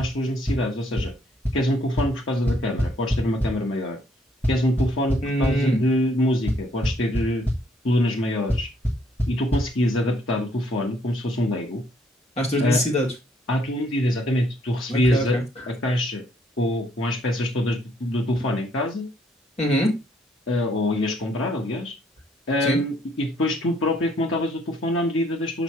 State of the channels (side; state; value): both; normal; correlation 0.67